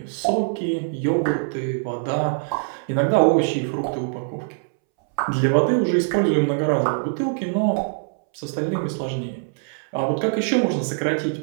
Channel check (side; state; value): left; silent; 63 dB below the other